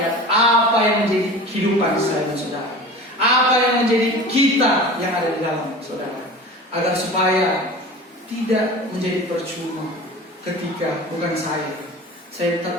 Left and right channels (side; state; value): both; normal; correlation 0.36